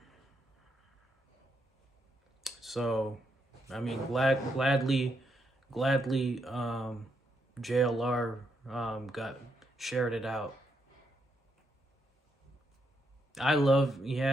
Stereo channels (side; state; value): both; normal; correlation 0.79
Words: So, I mean, gladly, JLR got shared it out. I love,